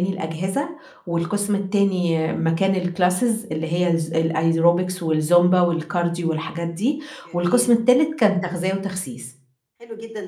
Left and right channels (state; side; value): identical; both; correlation 1.00